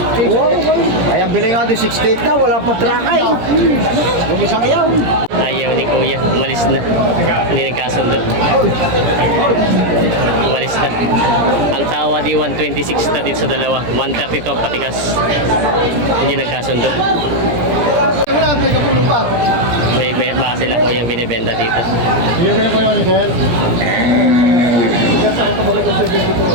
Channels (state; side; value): late; left; 17 ms